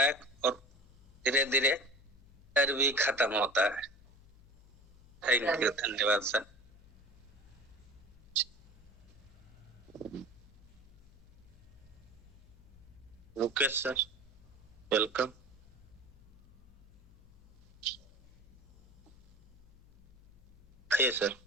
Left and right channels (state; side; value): noise; left; hum, 24 dB below the sound